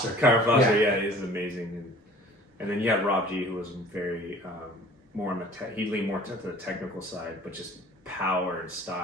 Kyle Foster, yeah, he's amazing. And then you had Rob G, who was very more on the he leaned more to the technical side, but just power and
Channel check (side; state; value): both; normal; correlation 0.49